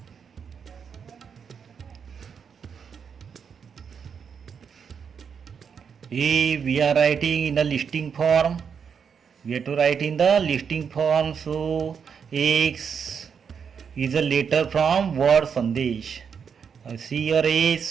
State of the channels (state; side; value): quieter; left; 6.8 dB